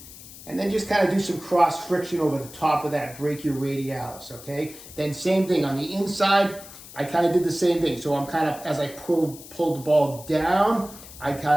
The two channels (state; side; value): noise; left; hiss, 17 dB below the sound